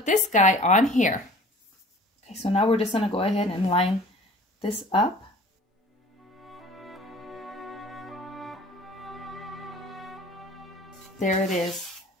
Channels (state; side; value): normal; both; correlation 0.47